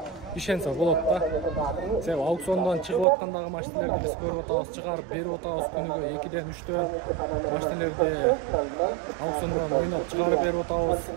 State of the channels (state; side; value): drops out; left; at 3.1 s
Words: ишенсе болот да. Себеби аукциондон чыгып аткандагы машиналерди биз көрүп атабыз, чыгарып берип атабыз күнүгө 2-ден 3төн машиналерди аукциондон ойноп чыгарып берип атабыз.